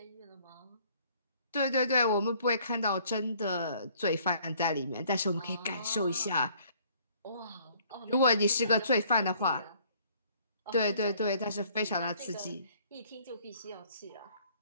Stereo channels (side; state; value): both; inverted; correlation -0.60